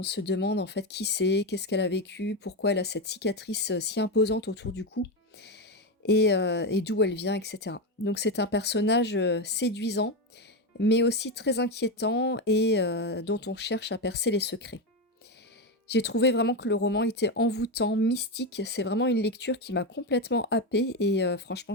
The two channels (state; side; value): normal; both; correlation 0.12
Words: se demande en fait qui c'est, qu'est-ce qu'elle a vécu, pourquoi elle a cette cicatrice, si imposante autour du cou et d'où elle vient et cetera. Donc c'est un personnage, séduisant, mais aussi très inquiétant et dont on cherche à percer les secrets. J'ai trouvé vraiment que le roman était envoûtant, mystique. C'est vraiment une lecture qui m'a complètement happée et franchement,